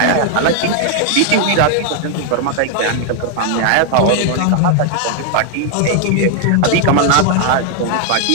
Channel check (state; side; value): different; both; correlation 0.00